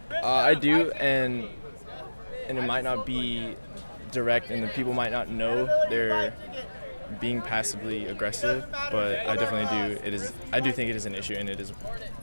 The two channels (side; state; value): both; inverted; correlation -1.00